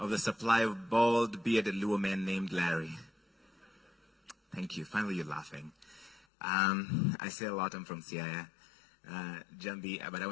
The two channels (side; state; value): right; drops out; at 6.2 s